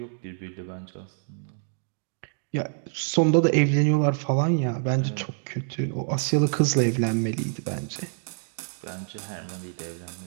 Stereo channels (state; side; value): silent; left; 60 dB below the other